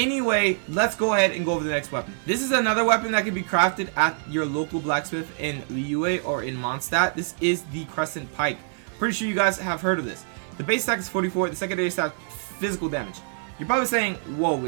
let's go ahead and go over the next weapon. This is another weapon that can be crafted at your local blacksmith in Liyue or in Mondstadt. This is the Crescent Pike. Pretty sure you guys have heard of this. The base stack is 44, the secondary stack physical damage. You're probably saying, whoa,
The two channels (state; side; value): silent; left; 56 dB below the other